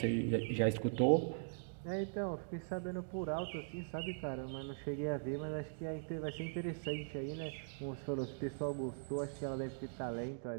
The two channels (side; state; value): left; silent; digital silence